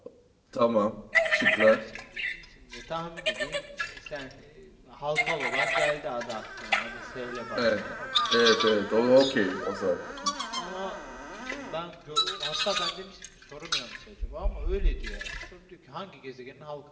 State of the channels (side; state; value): both; identical; correlation 1.00